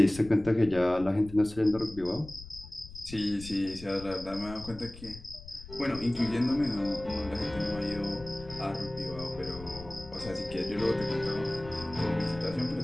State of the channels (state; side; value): noise; left; rumble, 16 dB below the sound